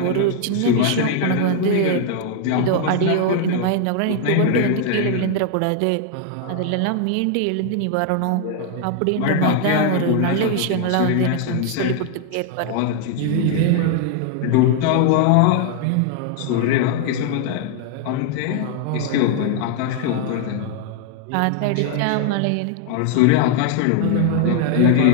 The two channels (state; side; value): different; both; correlation 0.00